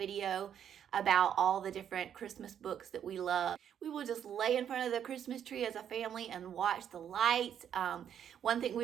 about all the different Christmas books that we love. We will just lay in front of the Christmas tree as a family and watch the lights. One thing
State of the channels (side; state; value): left; quieter; 9.1 dB